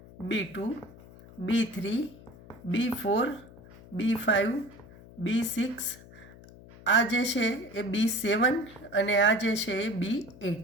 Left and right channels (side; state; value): left; noise; hum, 20 dB below the sound